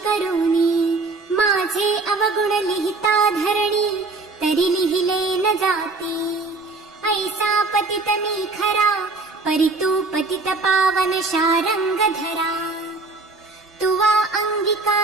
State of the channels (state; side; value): quieter; left; 3.6 dB